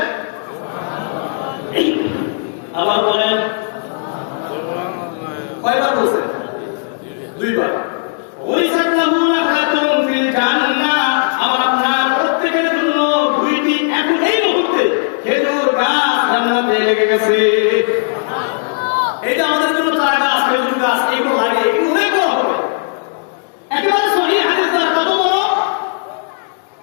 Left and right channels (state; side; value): silent; right; digital silence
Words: আবার বলেন কয়বার বলছেন দুইবার ওরিসাত লাহু নাখাতুন ফিল জান্নাহ আমার আপনার প্রত্যেকের জন্য দুইটি এখন এই মুহূর্তে খেজুর গাছ জান্নাতে লেগে গেছে এই যে আমাদের জন্য চারা গাছ খেজুর গাছ এইগুলো লাগে এগুলো অনেক বড় হবে একেবারে সহিহ হাদিস দ্বারা কত বড়